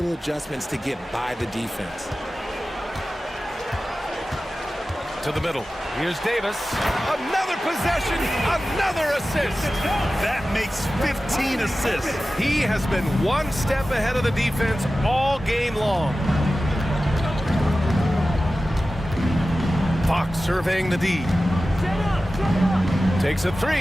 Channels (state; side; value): normal; both; correlation 0.95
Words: adjustments to get by the defense. To the middle. Here's Davis. Another possession. Another assist. That makes 15 assists. He has been one step ahead of the defense all game long. Fox surveying the D. Takes a